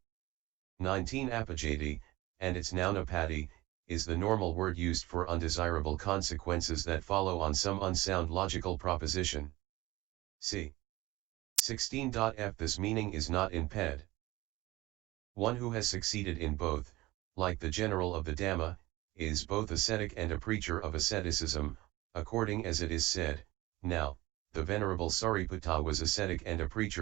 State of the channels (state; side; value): quieter; left; 19.3 dB